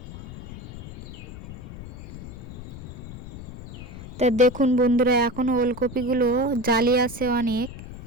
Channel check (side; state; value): left; noise; rumble, 12 dB below the sound